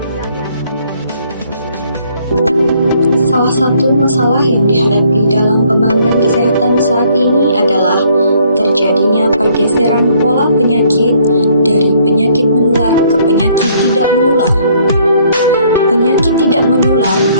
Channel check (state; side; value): inverted; both; correlation -0.64